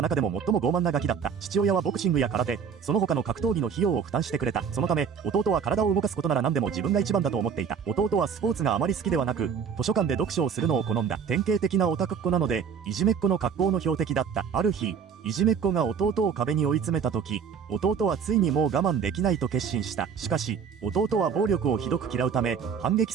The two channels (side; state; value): left; quieter; 6.8 dB